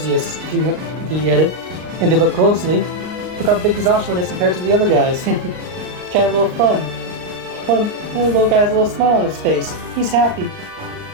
if you get it. And if you look closely, look how big this Oshawott is compared to the other guys. Kind of a little fun. One of the little guys has a little smile on his face. He's happy.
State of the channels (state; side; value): late; left; 38 ms